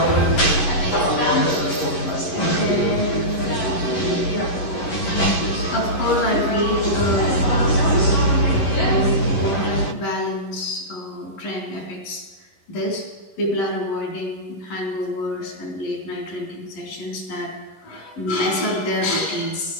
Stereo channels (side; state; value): right; late; 11 ms